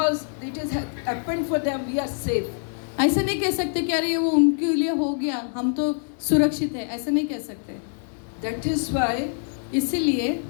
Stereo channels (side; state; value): right; silent; 62 dB below the other